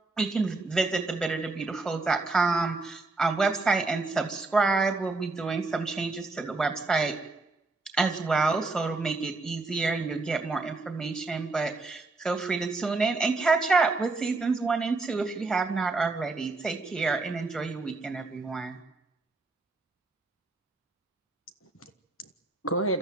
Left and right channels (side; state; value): left; quieter; 3.4 dB